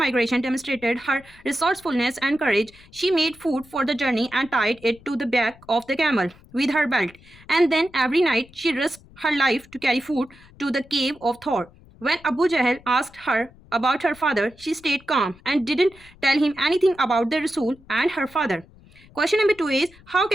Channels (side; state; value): left; noise; rumble, 25 dB below the sound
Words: demonstrated her resourcefulness and courage. She made food for the journey and tied it to the back of the camel with her belt. And then every night she risked her life to carry food to the cave of Thor. When Abu Jahl asked her about her father, she stayed calm and didn't tell him anything about the Rasul and her father. Question number 2 is, how